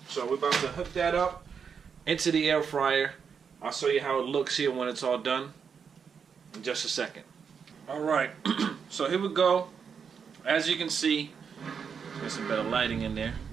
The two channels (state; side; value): quieter; left; 6.5 dB